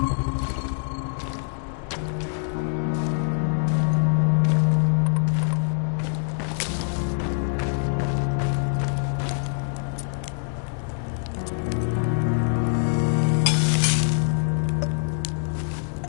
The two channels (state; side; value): silent; right; digital silence